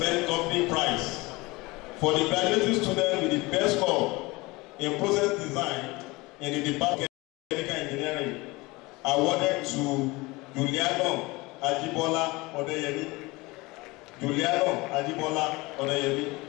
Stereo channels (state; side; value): quieter; right; 22.9 dB